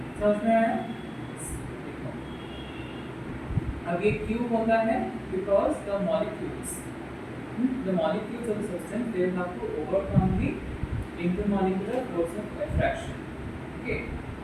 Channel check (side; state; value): both; identical; correlation 1.00